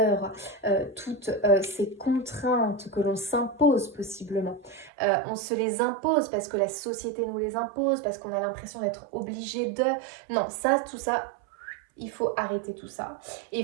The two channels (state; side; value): drops out; left; at 4.9 s